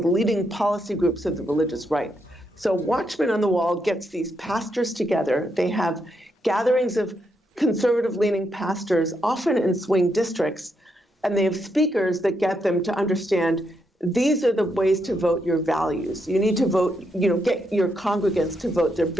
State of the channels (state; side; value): normal; both; correlation 0.80